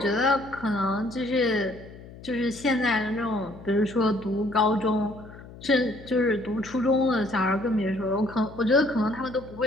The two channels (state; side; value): noise; left; hum, 17 dB below the sound